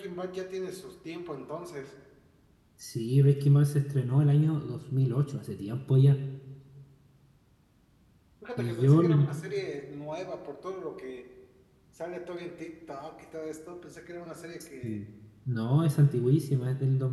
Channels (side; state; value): both; identical; correlation 1.00